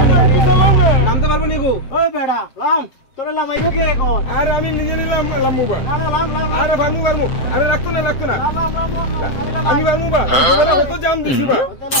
না নামতে পারবো নি গো ওই বেড়া লাম তোরে লামাইবো কে এখন আরে আমি নিজে নিলাম লামু বা আরে ভামু ভামু আরে রাখতো না আমি ভামু বা তো জাম দিছি বা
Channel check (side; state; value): right; late; 7.6 ms